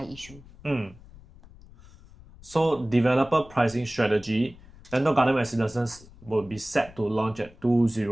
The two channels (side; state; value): left; noise; rumble, 22 dB below the sound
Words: issue. So developer pricing strategy, Lentor Garden Residences will be set to launch at